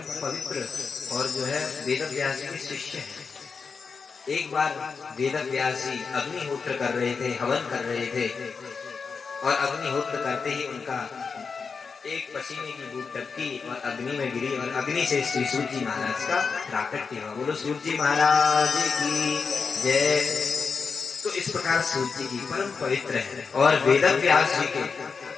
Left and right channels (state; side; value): quieter; right; 5.3 dB